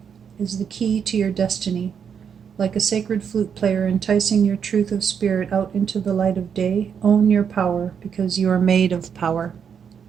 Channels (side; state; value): left; quieter; 7.3 dB